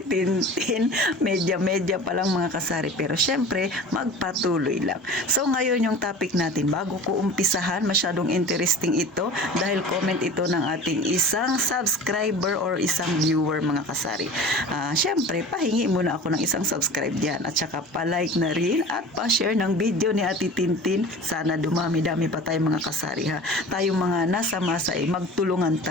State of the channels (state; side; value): normal; both; correlation 0.39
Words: medya-medya pa lang mga kasari. Pero siyempre, magpatuloy lang. So ngayon yung topic natin, bago ko umpisahan, masyadong interesting ito dahil comment ito ng ating isang subscriber or isang viewer mga kasari. Siyempre, pahingi muna ako ng isang subscribe dyan at saka pa-like na rin at pa-share ng video ni Ate Tintin. Sana dumami-dami pa tayo mga kasari ha. Tayong mga nasa masa ay magtulungan